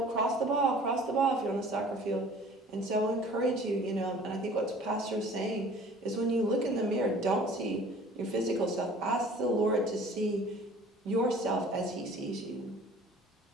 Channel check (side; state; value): both; normal; correlation 0.49